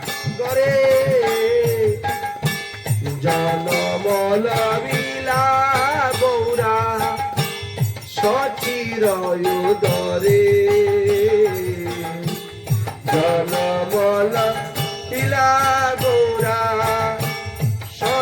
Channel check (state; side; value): identical; both; correlation 1.00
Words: জনমল বিলা গৌরা সচির উদরে। জনমল বিলা গৌরা